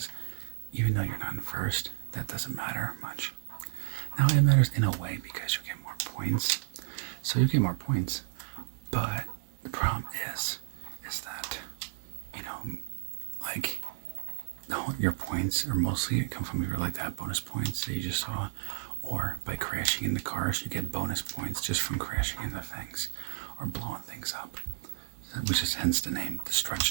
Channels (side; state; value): left; silent; 56 dB below the other